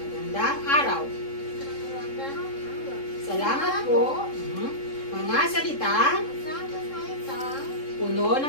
araw. Magandang araw. Salamat po. Mga salitang Salitang puno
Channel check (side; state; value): right; late; 3.7 ms